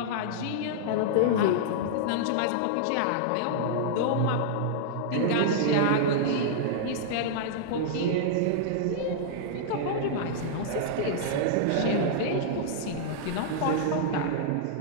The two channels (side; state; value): both; different; correlation -0.02